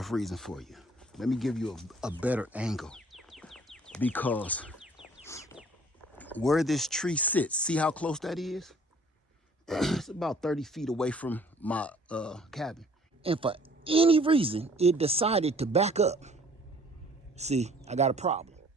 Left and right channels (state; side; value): normal; both; correlation 0.56